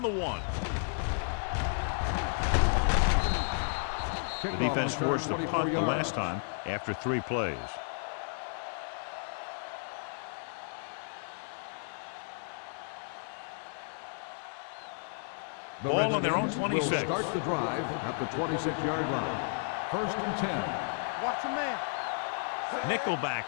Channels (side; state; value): right; silent; 56 dB below the other